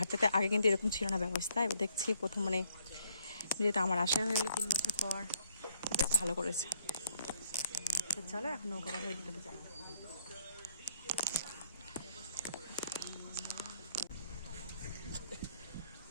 আগে কিন্তু এরকম ছিল না ব্যবস্থা। এবার দেখছি প্রথম, মানে যেহেতু আমার আশা হয়ে গেলো 3 বছর পর, বেশ ভালো করেছে। তো চলো এখন নৌকা হয়ে দিতে যাই।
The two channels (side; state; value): both; inverted; correlation -0.66